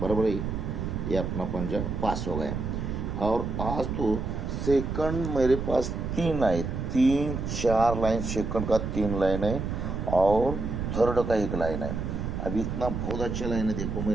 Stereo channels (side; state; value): right; noise; rumble, 3 dB below the sound